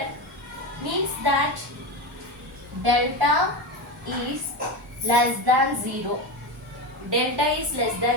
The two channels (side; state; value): both; normal; correlation 0.19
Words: means that delta is less than 0. Delta is less